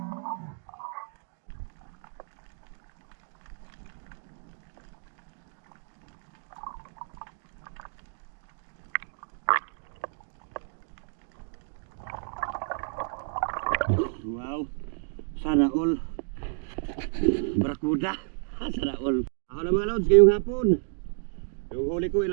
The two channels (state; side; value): silent; left; digital silence